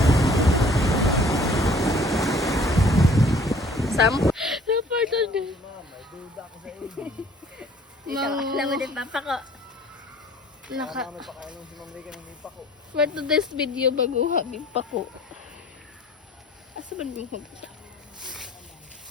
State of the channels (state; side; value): normal; both; correlation 0.53